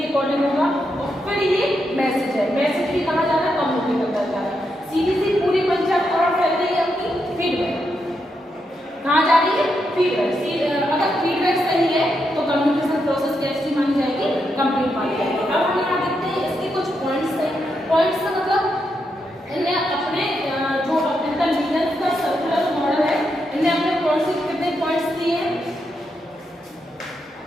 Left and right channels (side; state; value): both; normal; correlation 0.83